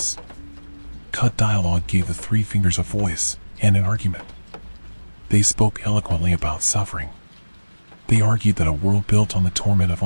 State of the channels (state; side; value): inverted; both; correlation -1.00